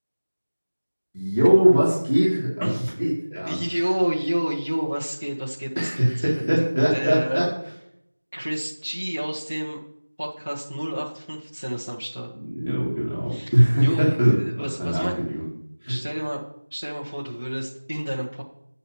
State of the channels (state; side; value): inverted; both; correlation -1.00